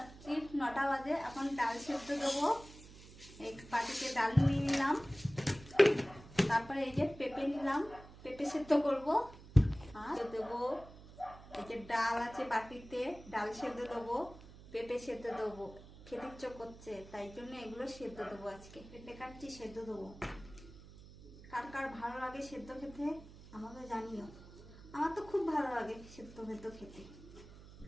9টা বাজে। এখন ডাল সেদ্ধ দেবো। এই বাটিতে ডাল নিয়ে নিলাম, তারপরে এই যে পেঁপে নিলাম, পেঁপে সেদ্ধ করব। আর দেবো এই যে ডাল আছে বাটিতে, ডাল সেদ্ধ দেবো, পেঁপে সেদ্ধ দেবো। খেতে ইচ্ছে করছে, তাই জন্য এগুলো সেদ্ধ দেবো। আজকে পেঁপে কাটছি, সেদ্ধ দেবো। কার কার ভালো লাগে সেদ্ধ খেতে আমাকে জানিও। আমার তো খুব ভালো লাগে সেদ্ধ ভেদ্ধ খেতে।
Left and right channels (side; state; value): right; noise; hum, 18 dB below the sound